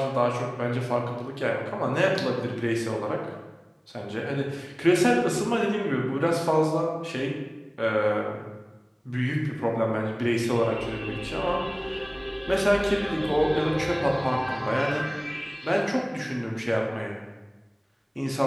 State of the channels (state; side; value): identical; both; correlation 1.00